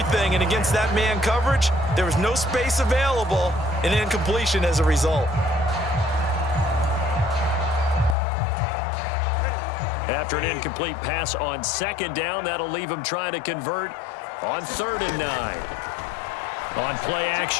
and against that man coverage, there was no space available, and incompletion as a result. After an incomplete pass on second down, that'll leave him trying to convert on 3rd and 9. On play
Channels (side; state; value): right; drops out; at 8.2 s